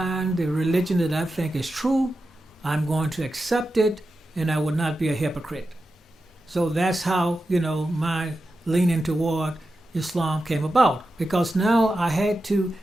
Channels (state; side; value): normal; both; correlation 0.91